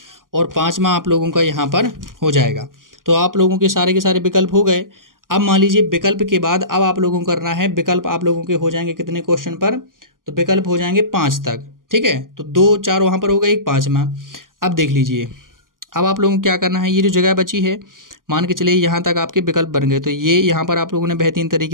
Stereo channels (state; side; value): late; left; 0.91 ms